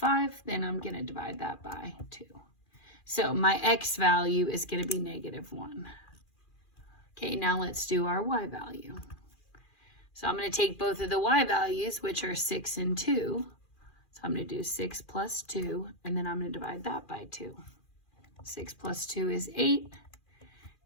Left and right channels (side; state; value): right; late; 2.4 ms